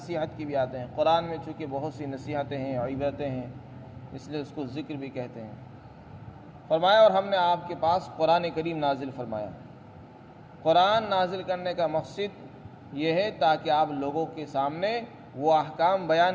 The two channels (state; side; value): identical; both; correlation 1.00